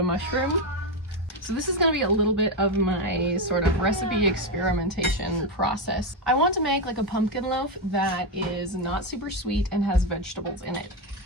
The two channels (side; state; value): both; normal; correlation 0.08